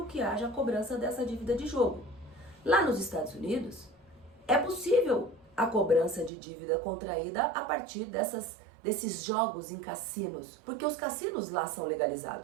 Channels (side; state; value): left; drops out; at 6.3 s